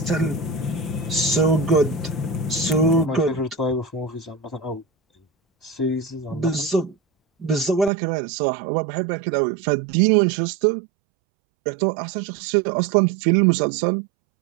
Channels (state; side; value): drops out; left; at 7.9 s